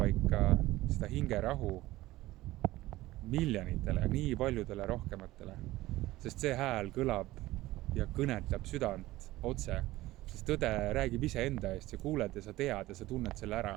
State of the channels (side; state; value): left; quieter; 17.3 dB